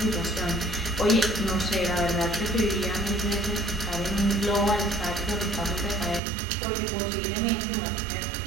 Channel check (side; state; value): left; drops out; at 6.2 s